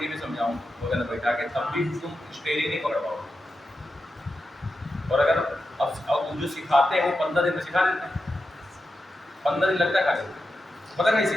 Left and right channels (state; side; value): normal; both; correlation 0.89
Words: में समझाऊँ बगल में बैठा के, तब भी तुम स्टेयरिंग नहीं पकड़ पाओगे। और अगर अब जो सिखाते हैं वो 15 दिन में सिखा देते हैं, 15 दिन लगता है खाली, पता नहीं